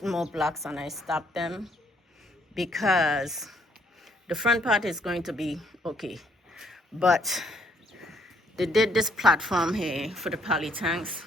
more blocks, and I stopped them because the front part is going to be okay, but they did this platform here for the poly tanks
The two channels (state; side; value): normal; both; correlation 0.68